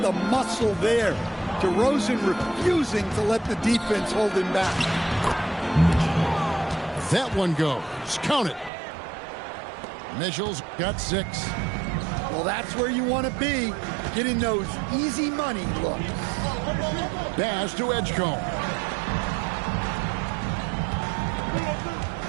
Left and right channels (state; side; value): drops out; left; at 8.7 s